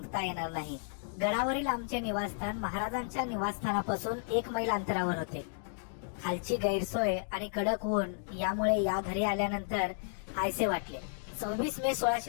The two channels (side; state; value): right; silent; digital silence